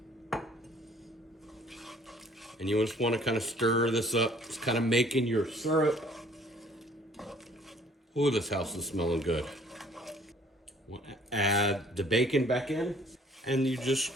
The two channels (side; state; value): both; normal; correlation 0.57